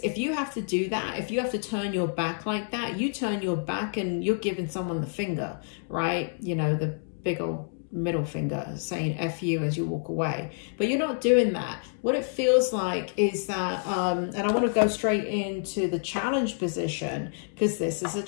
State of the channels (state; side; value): silent; right; digital silence